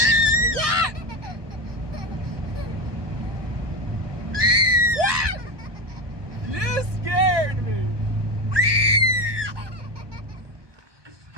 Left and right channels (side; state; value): left; late; 1.2 ms